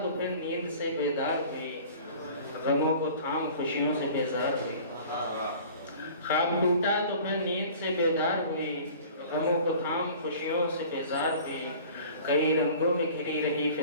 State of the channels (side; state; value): both; inverted; correlation -0.45